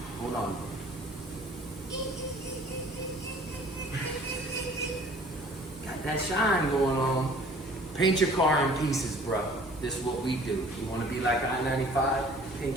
Hold on. Got that shine going on. Paint your car in pieces, bro. This is what we do. You want to be like I-95?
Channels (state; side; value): normal; both; correlation 0.51